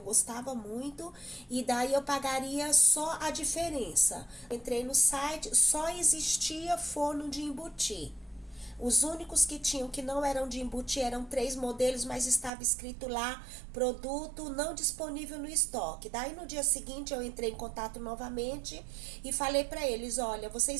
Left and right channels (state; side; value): drops out; left; at 12.5 s